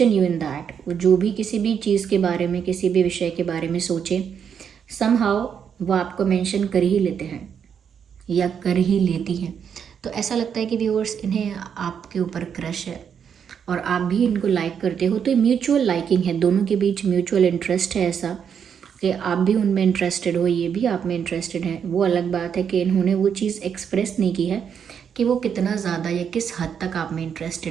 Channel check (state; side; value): quieter; left; 7.6 dB